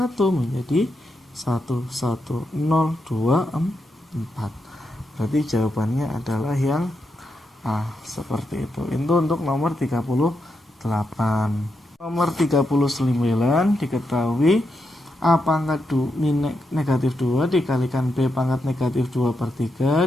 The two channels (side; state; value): both; normal; correlation 0.84